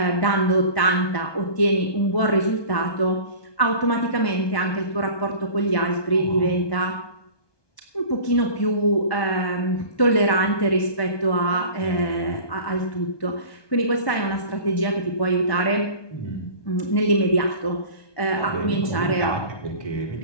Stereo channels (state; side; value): late; right; 1.2 ms